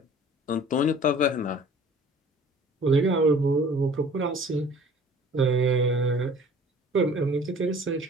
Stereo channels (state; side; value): normal; both; correlation 0.49